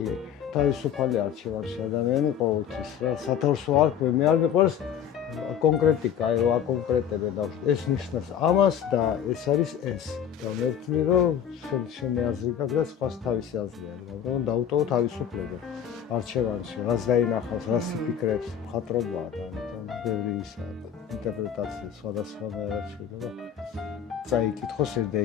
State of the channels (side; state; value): right; quieter; 9.0 dB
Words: თავისუფალი არჩევანში ადამიანი ყოველთვის რა სათავსო არ ქვე მე არ მიყვარს კონკრეტიკა აი რა კონკრეტები და ეს ნიშნავს ამას და ეს არის ეს და მე ვთვლი რომ შენი აზრი გაქვს და სხვას თავისი აზრი აქვს მაგრამ დაუტოვო თავისუფლება არჩევანში რას დაინახავს რას იფიქრებს მხატვრობაა და ამიტომ ბევრი ისაა ინტერპრეტაცია სხვადასხვანაირად შეიძლება წაიკითხოს ეს